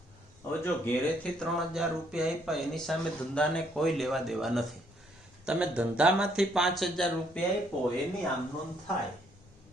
હવે જો ઘેરેથી 3000 રૂપિયા આપ્યા એની સામે ધંધાને કોઈ લેવા દેવા નથી. તમે ધંધામાંથી 5000 રૂપિયા આપ્યો એની આમ નોંધ થાય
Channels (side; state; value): left; noise; rumble, 27 dB below the sound